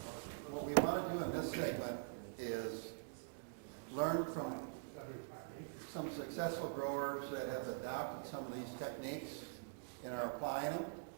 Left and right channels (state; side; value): silent; left; digital silence